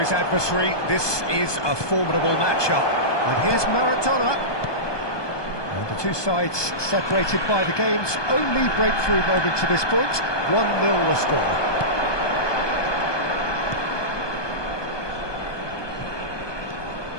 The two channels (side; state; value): right; late; 1.2 ms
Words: adversary. This is a formidable matchup. And here's Maradona. And the two sides separated by the game's only breakthrough moment to this point. 1-0 the score.